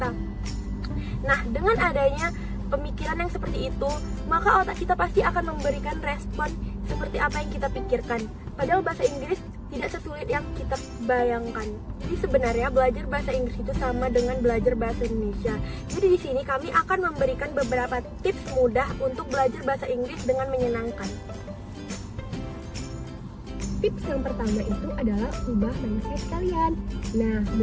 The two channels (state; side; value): identical; both; correlation 1.00